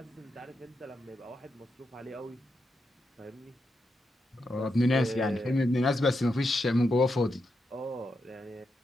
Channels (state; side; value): normal; both; correlation 0.85